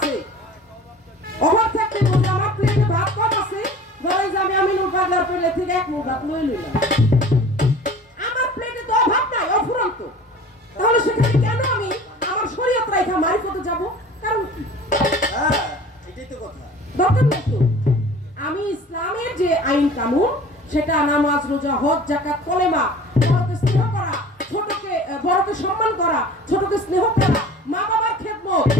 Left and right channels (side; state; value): both; normal; correlation 0.43